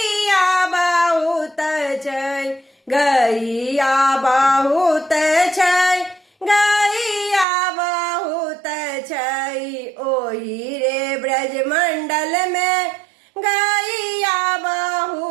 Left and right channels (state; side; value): drops out; left; at 7.5 s